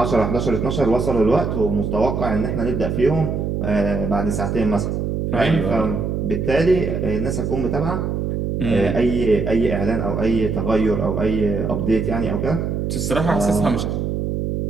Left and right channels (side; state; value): right; noise; hum, 1 dB below the sound